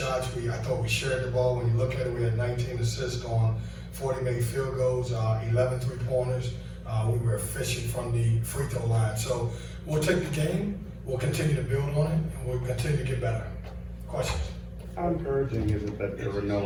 I thought we shared the ball. When you look at it, we had 19 assists on 40 made field goals, 11 three-pointers. We were efficient from the free throw line. So we'll take the game, we'll continue to build on it, and we'll continue to get better. Questions? How encouraging is it that there were no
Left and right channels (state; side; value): identical; both; correlation 1.00